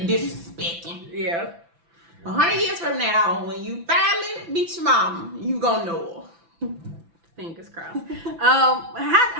disrespecting. Yeah. 100 years from now, when you finally meet your mom, you gonna know her. Fingers crossed.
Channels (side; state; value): left; late; 5.9 ms